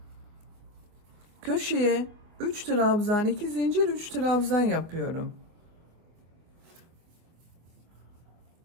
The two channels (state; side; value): late; left; 25 ms